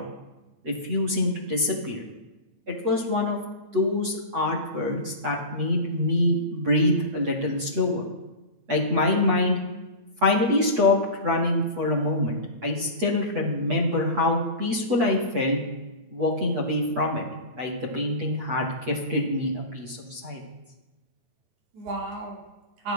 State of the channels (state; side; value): late; left; 8.2 ms